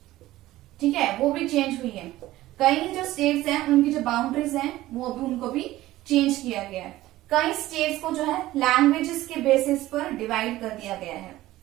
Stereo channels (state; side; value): quieter; left; 16.1 dB